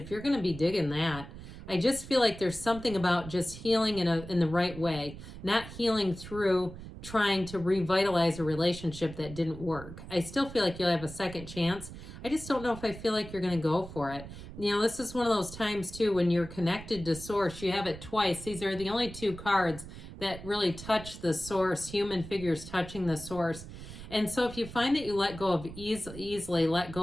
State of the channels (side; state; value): right; noise; rumble, 13 dB below the sound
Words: you're going to be digging that. I just feel like there's something about just healing in the right way, not healing through trying to revitalize a relationship that didn't work. I still feel like you'll have a second chance. I just don't know if I feel like you're going to go for it. You know, this is one of those times too when you're connected to source. You have it twice. These are the only two cards that really touch the source, human figures touching the source. And so if you find that you let go of easily let